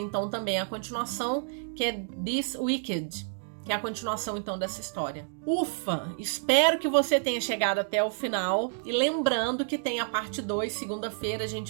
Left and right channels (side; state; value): left; silent; digital silence